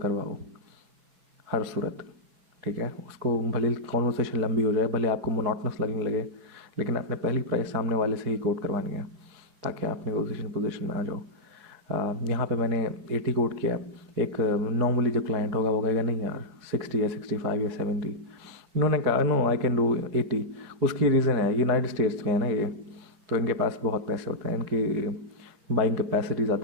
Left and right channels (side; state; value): left; late; 4.7 ms